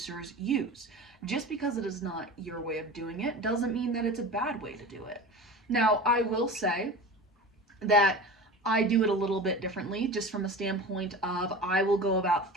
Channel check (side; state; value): both; normal; correlation 0.33